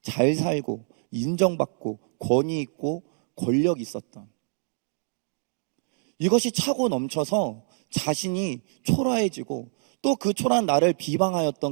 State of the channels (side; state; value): left; silent; digital silence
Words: 잘 살고 인정받고 권위 있고 권력 있었던, 이것이 차고 넘쳐서 자신이 초라해지고 또 그 초라한 나를